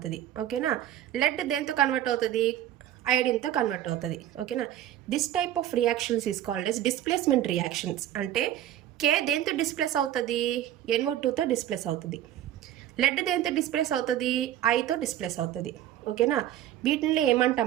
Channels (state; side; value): quieter; left; 12.1 dB